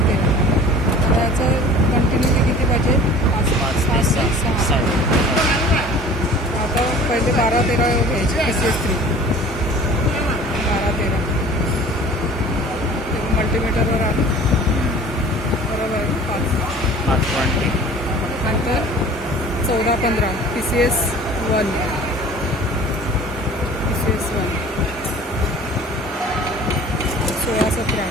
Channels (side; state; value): both; normal; correlation 0.45